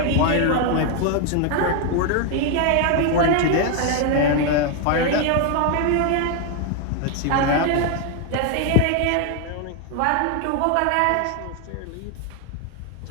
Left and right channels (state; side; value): different; both; correlation 0.01